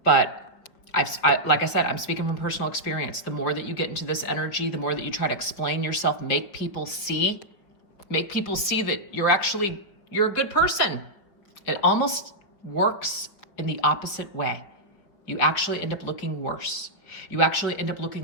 But like I said, I'm speaking from personal experience. The more that you get into this energy, the more that you try to explain yourself, make people see that you're a good person. It almost works in the opposite way. You actually end up looking worse. You actually end up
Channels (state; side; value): late; right; 5.5 ms